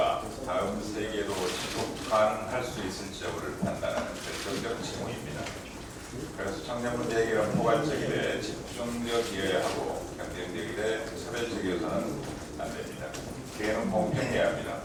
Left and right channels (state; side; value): identical; both; correlation 1.00